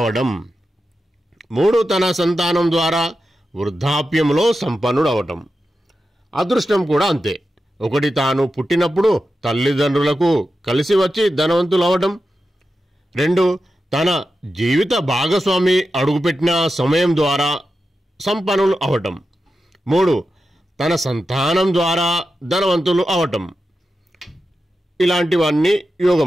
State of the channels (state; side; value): normal; both; correlation 0.91